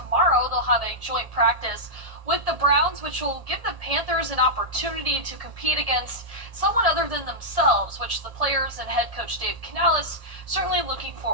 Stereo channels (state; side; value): late; left; 1.7 ms